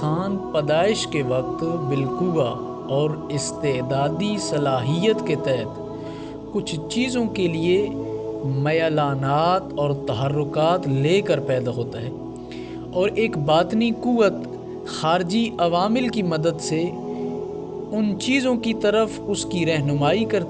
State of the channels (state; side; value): identical; both; correlation 1.00